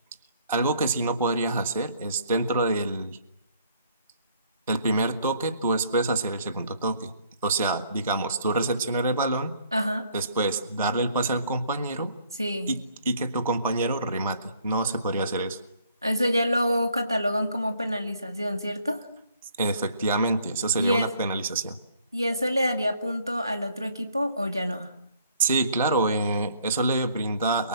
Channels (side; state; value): both; inverted; correlation -0.62